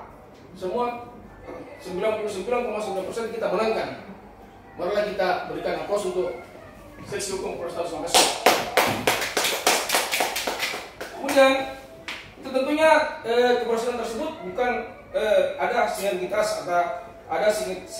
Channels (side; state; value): both; identical; correlation 1.00